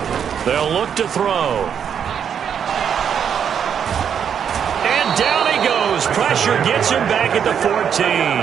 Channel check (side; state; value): left; quieter; 8.0 dB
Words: They'll look to throw. And down he goes. Pressure gets him back at the